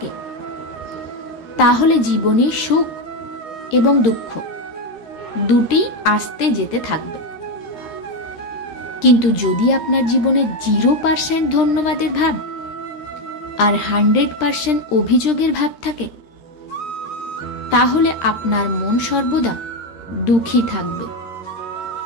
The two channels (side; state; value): right; late; 13 ms